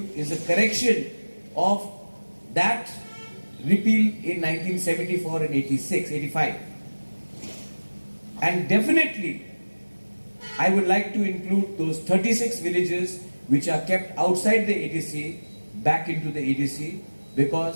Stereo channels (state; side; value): inverted; both; correlation -1.00